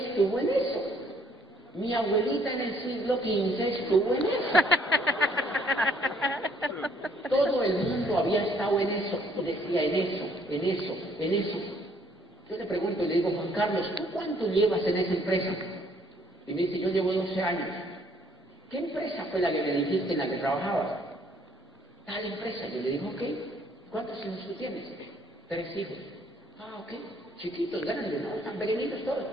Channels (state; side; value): normal; both; correlation 0.63